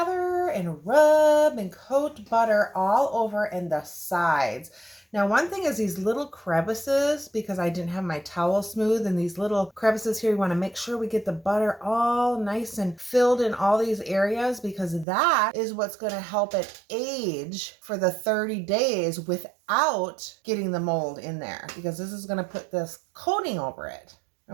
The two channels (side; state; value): left; drops out; at 15.1 s